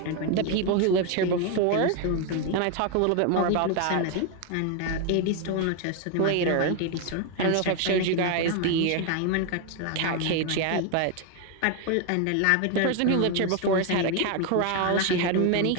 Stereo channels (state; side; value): different; both; correlation 0.01